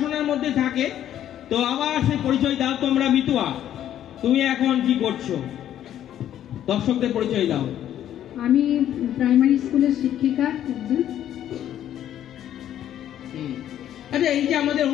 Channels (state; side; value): quieter; right; 11.2 dB